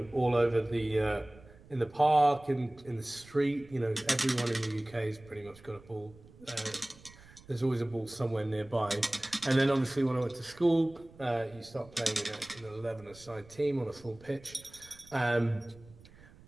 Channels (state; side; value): noise; right; rumble, 23 dB below the sound